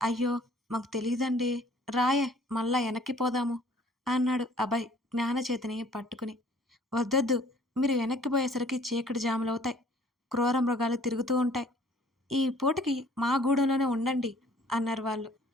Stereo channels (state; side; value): normal; both; correlation 0.56